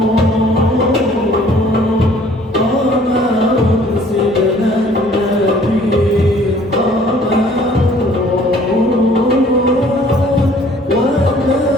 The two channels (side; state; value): both; normal; correlation 0.56